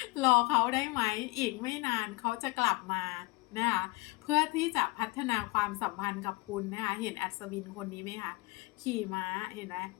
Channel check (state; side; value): quieter; right; 23.3 dB